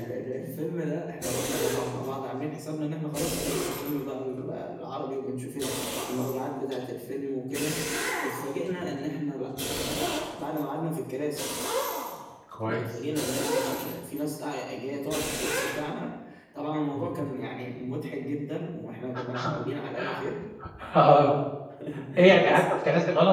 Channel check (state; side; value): identical; both; correlation 1.00